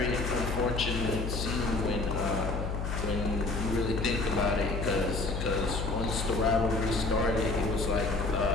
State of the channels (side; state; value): left; noise; hum, 3 dB below the sound